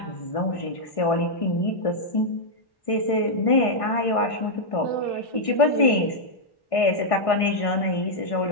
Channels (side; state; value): right; late; 1.6 ms